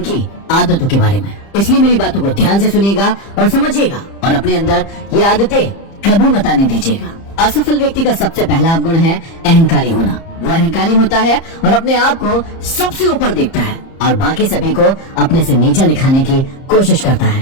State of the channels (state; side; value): late; right; 30 ms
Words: आदतों के बारे में। इसलिए मेरी बातों को ध्यान से सुनिएगा और समझिएगा और अपने अंदर ये आदतें कभी मत आने दीजिएगा। असफल व्यक्ति का सबसे पहला अवगुण है अहंकारी होना। वो अहंकारी होता है और अपने आप को सबसे ऊपर देखता है और बाकी सभी को अपने से नीचा दिखाने की कोशिश करता